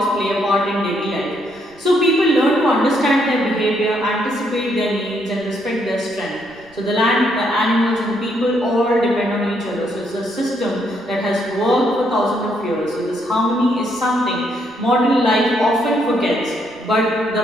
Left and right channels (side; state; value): right; noise; rumble, 30 dB below the sound